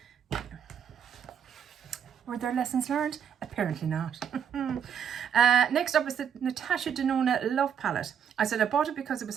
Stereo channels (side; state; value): left; quieter; 8.1 dB